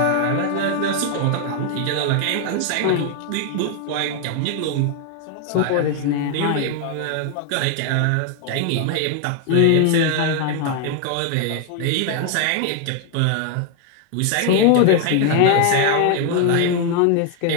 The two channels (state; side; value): different; both; correlation 0.00